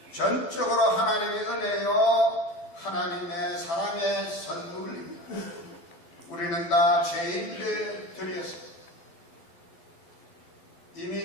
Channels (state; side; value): late; right; 12 ms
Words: 전적으로 하나님의 은혜요 하나님의 사랑의 선물입니다. 우리는 다 죄인들이었습니다.